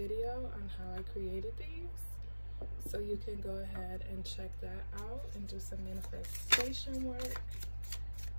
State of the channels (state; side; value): inverted; both; correlation -1.00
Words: on how I created these. So you can go ahead and check that out and do some manifestation work.